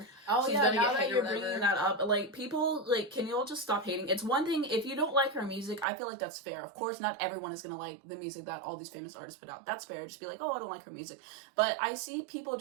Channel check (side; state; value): left; drops out; at 5.9 s